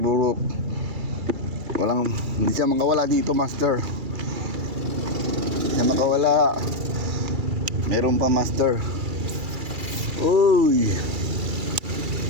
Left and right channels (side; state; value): left; late; 2.3 ms